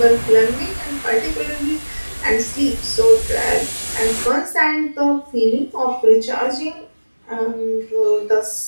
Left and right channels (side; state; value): both; inverted; correlation -1.00